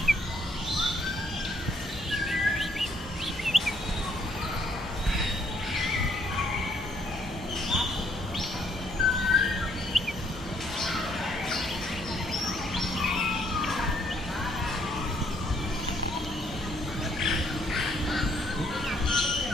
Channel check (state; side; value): normal; both; correlation 0.68